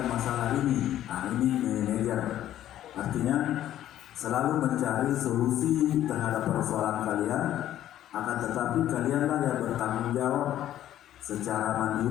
masalah ini? Nah, ini manajer. Artinya selalu mencari solusi terhadap persoalan kalian, akan tetapi kalianlah yang bertanggung jawab secara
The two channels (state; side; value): quieter; right; 12.3 dB